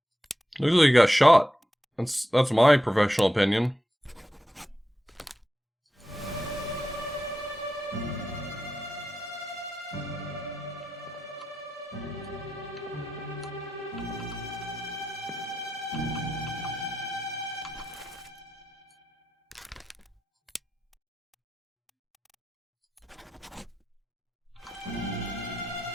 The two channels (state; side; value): normal; both; correlation 0.89